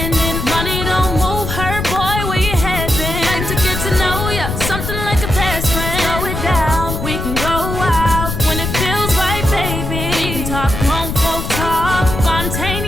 Money don't move her, boy. Where you head been? Like to get to know ya, something like a best friend. Slow it down, we can go wild when it feels right, baby. We can talk grown folk talk,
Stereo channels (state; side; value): noise; left; rumble, 4 dB below the sound